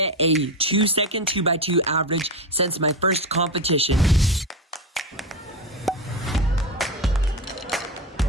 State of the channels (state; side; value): normal; both; correlation 0.17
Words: a 2-second 2x2 average since my first competition.